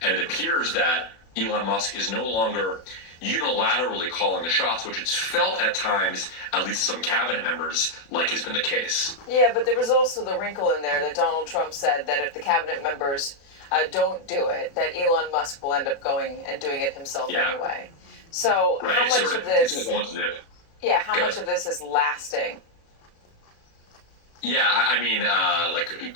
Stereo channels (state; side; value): late; right; 36 ms